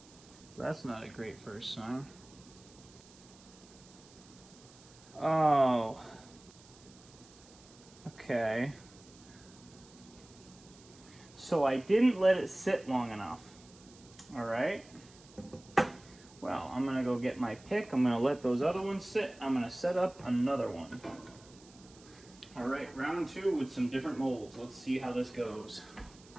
That's not a great first sign. Oh. Okay. So I didn't let it sit long enough. Alright. Well, I'm going to go get my pick. I'm going to let those other ones sit. I'm going to set up another one. Alright, round 2 with some different molds. Let's see how this goes.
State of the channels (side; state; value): right; noise; hiss, 23 dB below the sound